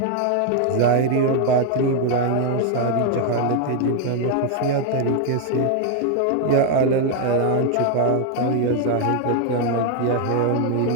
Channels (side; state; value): both; different; correlation 0.00